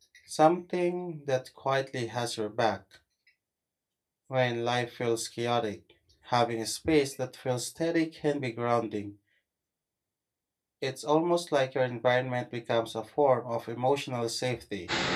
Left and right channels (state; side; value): identical; both; correlation 1.00